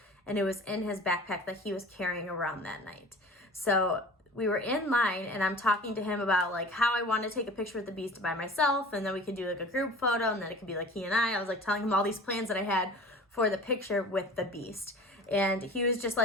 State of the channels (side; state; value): both; normal; correlation 0.40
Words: and it was in his backpack that he was carrying around that night. So we were in line, and I'm talking to him about like how I want to take a picture with the Beast by myself, and then we could do like a group photo, and then it could be like he and I was like telling him all these plans that I had for the picture with the Beast. And he was just